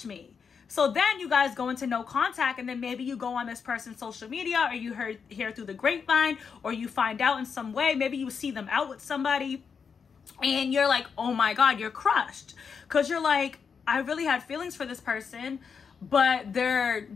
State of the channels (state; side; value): quieter; right; 6.1 dB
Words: me. So then you guys go into no contact, and then maybe you go on this person's social media, or you hear through the grapevine, or you find out in some way. Maybe you see them out with somebody, and you're like, oh my God, you're crushed. Because you're like, I really had feelings for this person, but they're